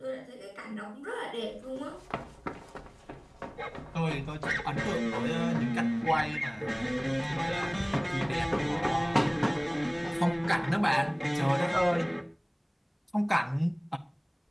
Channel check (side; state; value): both; identical; correlation 1.00